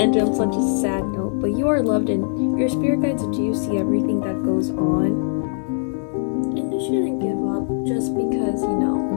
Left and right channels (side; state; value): right; silent; digital silence